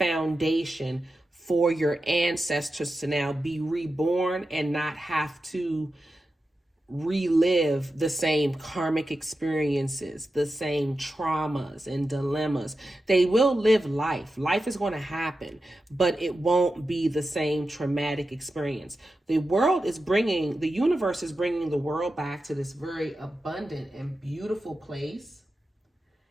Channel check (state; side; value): normal; both; correlation 0.91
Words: for your ancestors to now be reborn and not have to relive the same karmic experiences, the same traumas and dilemmas. They will live life. Life is going to happen, but it won't be the same traumatic experience. The universe is bringing the world back to this very abundant and beautiful place